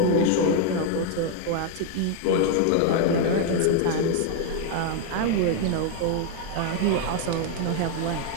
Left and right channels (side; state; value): both; different; correlation 0.00